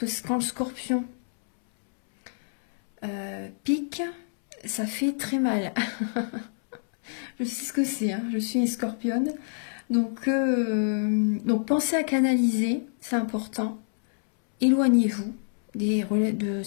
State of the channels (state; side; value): silent; right; 60 dB below the other